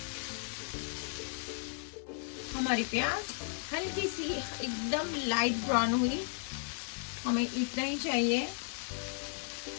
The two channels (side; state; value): right; silent; 55 dB below the other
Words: हमारी प्याज हल्की सी एकदम लाइट ब्राउन हुई, हमें इतना ही चाहिए।